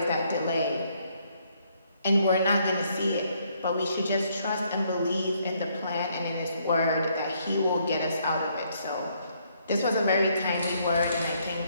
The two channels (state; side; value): inverted; both; correlation -0.70